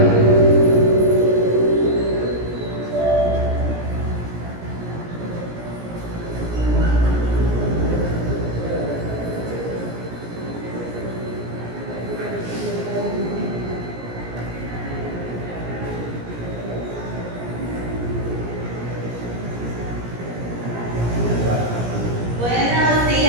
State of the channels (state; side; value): late; left; 17 ms